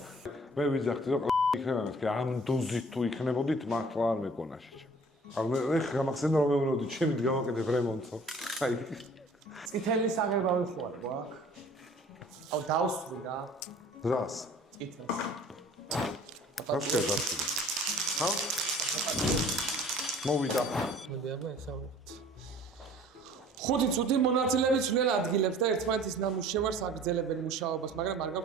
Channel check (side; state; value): both; normal; correlation 0.50